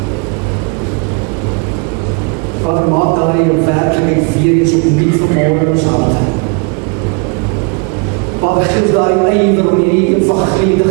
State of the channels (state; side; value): quieter; left; 33.3 dB